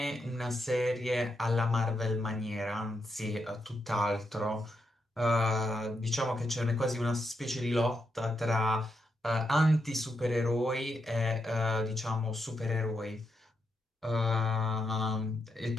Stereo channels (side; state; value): both; normal; correlation 0.83